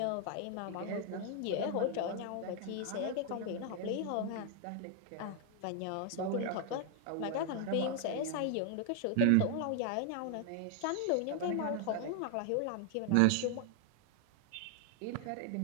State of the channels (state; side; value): different; both; correlation 0.00